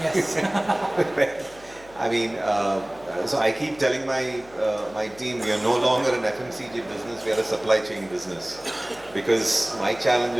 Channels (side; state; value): left; noise; hum, 24 dB below the sound